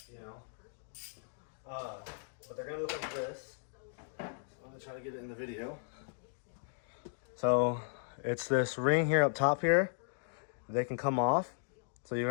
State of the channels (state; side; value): silent; right; digital silence